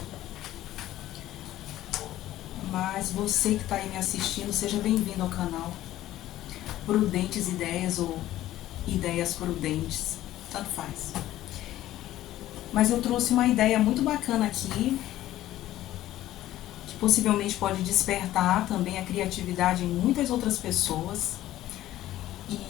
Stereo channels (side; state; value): right; quieter; 14.3 dB